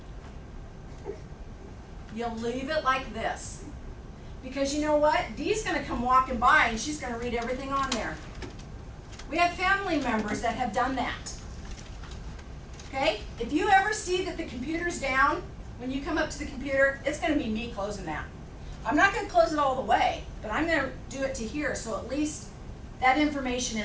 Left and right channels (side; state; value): both; identical; correlation 1.00